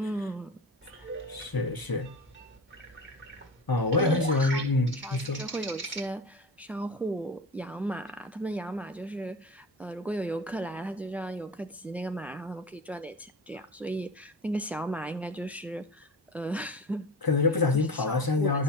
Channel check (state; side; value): normal; both; correlation 0.32